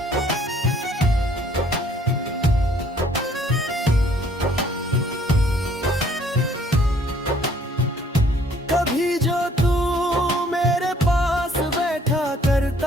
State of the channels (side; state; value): both; normal; correlation 0.61